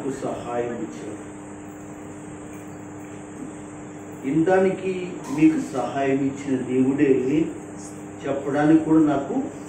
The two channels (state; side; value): identical; both; correlation 1.00